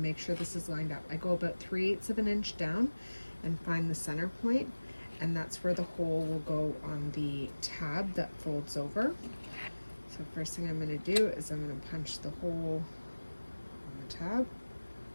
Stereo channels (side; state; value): both; inverted; correlation -1.00